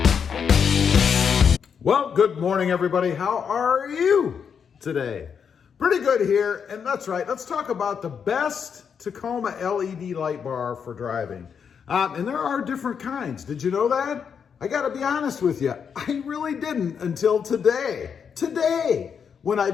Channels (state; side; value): quieter; right; 6.9 dB